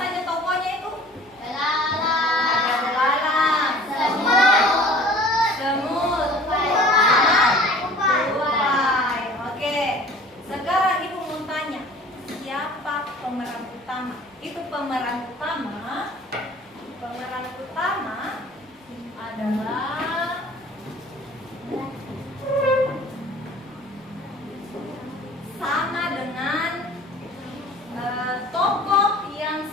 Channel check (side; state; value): both; normal; correlation 0.47